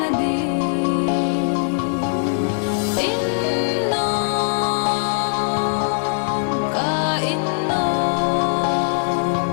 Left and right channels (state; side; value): silent; right; 65 dB below the other